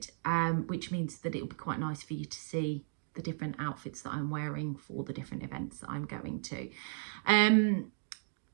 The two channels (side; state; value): left; silent; digital silence